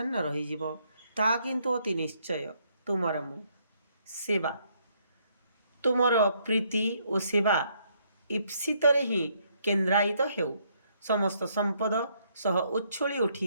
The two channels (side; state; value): both; inverted; correlation -0.71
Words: रही ता किंतु अति निश्चय तुमर मु सेवा तुमर प्रीति और सेवा ईप्सित ही केन्द्रायित हेउ समस्त संपद सह उच्छुली